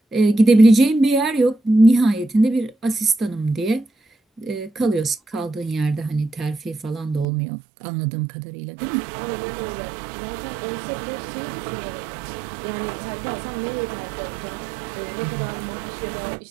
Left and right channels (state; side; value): drops out; left; at 7.2 s